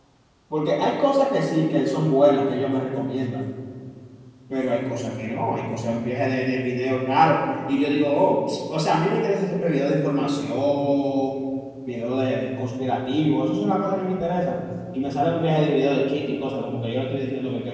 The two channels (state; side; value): identical; both; correlation 1.00